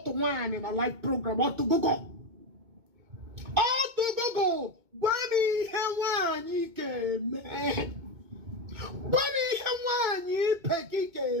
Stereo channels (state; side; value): late; left; 2.2 ms